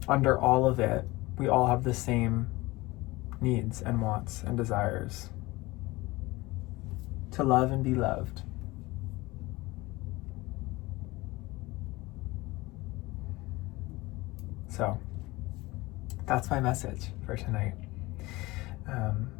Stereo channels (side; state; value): right; quieter; 21.0 dB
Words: Under all of it, we all have the same needs and wants and desires. To love and be loved. So, that's my message for tonight.